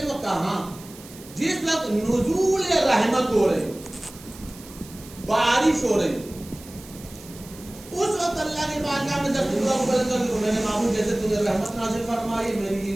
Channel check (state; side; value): noise; right; hiss, 19 dB below the sound